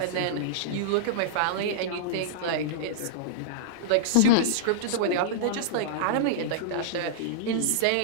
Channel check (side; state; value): both; different; correlation -0.02